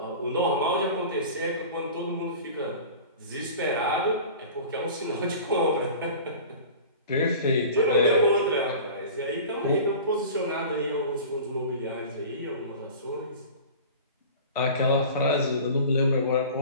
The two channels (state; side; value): inverted; both; correlation -0.39